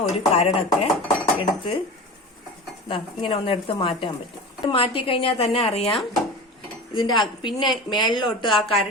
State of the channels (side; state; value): both; normal; correlation 0.32